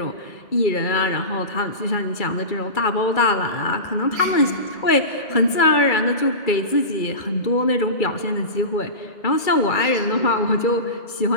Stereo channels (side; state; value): right; late; 2.3 ms